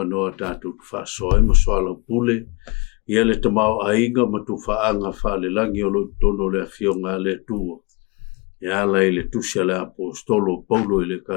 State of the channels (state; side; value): quieter; right; 27.5 dB